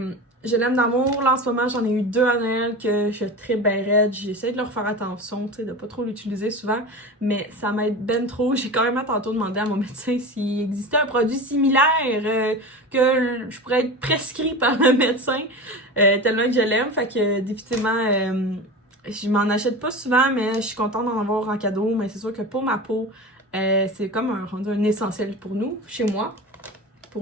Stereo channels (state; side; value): normal; both; correlation 0.29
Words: je l'aime d'amour. Là, en ce moment, j'en ai eu 2 à Noël que je tripe ben raide. J'essaie de leur faire attention, tu sais, de pas trop l'utiliser souvent, mais ça m'aide ben trop. J'ai quand même tantôt demandé à mon médecin s'il existait un produit similaire que je pourrais être prescrit par le médecin, tellement que je l'aime. Fait que définitivement, je m'en achète pas souvent, mais je suis contente d'en avoir en cadeau. Mais c'est sûr que pour ma peau, c'est comme un essentiel pour nous, chez moi.